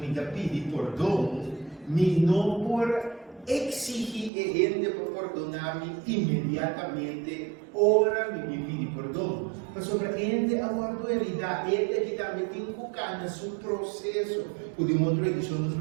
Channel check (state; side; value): drops out; left; at 4.3 s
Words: dá pedir perdão, me não por exigir ele para perdonar-me imediatamente, ora me pedir perdão. Mas sobre ele aguardo herida, ele que também tem que ficar no seu processo. O de uma outra edição nos